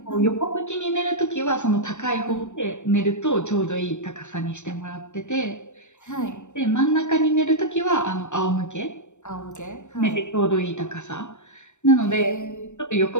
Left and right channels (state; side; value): late; right; 0.84 ms